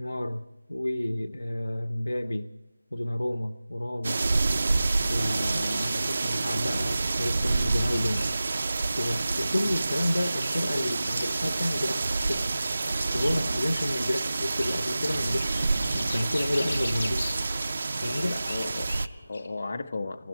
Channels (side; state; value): both; inverted; correlation -0.96